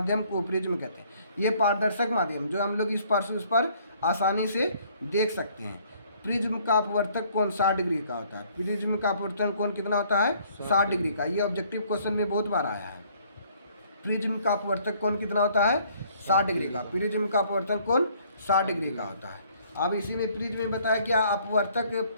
को प्रिज्म कहते हैं। ये पारदर्शक माध्यम जो हम लोग इस पार से उस पर आसानी से देख सकते हैं। प्रिज्म का अपवर्तक कोण 60 डिग्री का होता है। प्रिज्म का अपवर्तन कोण कितना होता है, 60 डिग्री का। ये ऑब्जेक्टिव क्वेश्चन में बहुत बार आया है। प्रिज्म का अपवर्तक कोण कितना होता है, 60 डिग्री का। प्रिज्म का अपवर्तन कोण 60 डिग्री का होता है। अब इसी में प्रिज्म में बताया क्या, अपवर्तक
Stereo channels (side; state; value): both; inverted; correlation -0.61